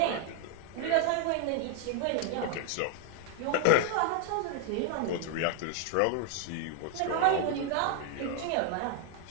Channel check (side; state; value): both; different; correlation 0.00